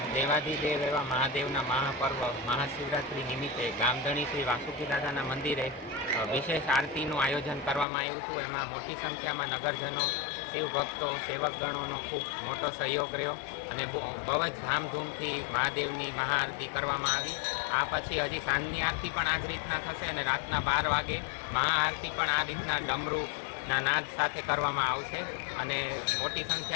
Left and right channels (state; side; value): drops out; right; at 7.9 s